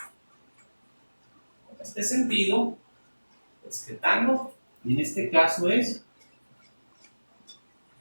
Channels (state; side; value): inverted; both; correlation -1.00